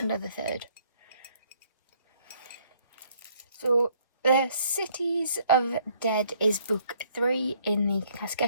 or the third. So, The Cities of Dead is book 3 in the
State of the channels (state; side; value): inverted; both; correlation -0.64